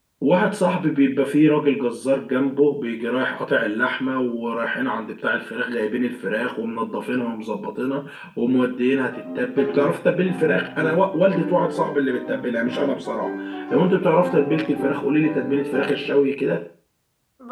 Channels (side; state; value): both; identical; correlation 1.00